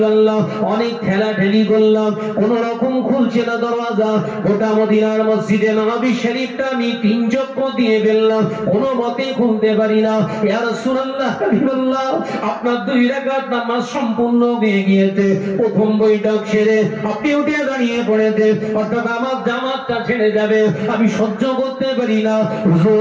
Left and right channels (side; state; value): both; identical; correlation 1.00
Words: অনেক ঠেলাঠেলি করলাম, কোন রকম খুলছে না দরজা। গোটা মদিনার মসজিদে নববী শরীফটা আমি 3 চক্কর দিয়ে ফেললাম, কোনো মতে খুলতে পারি না। ইয়া রাসূলুল্লাহ হাবিবাল্লাহ আপনার 2 রাকাত নামাজ সম্পূর্ণ হয়ে গিয়েছে। প্রথম বৈঠক সেরে আপনি উঠে দাঁড়িয়ে পড়েছে, অর্থাৎ আমার জামাতটা ছেড়ে যাবে, আমি সহ্য করতে পারি না।